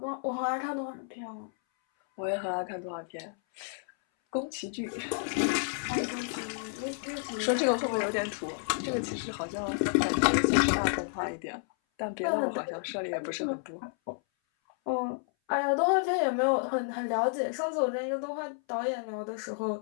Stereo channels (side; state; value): right; silent; 57 dB below the other